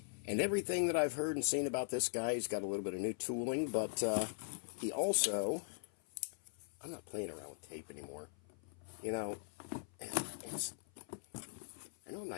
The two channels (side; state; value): right; silent; 51 dB below the other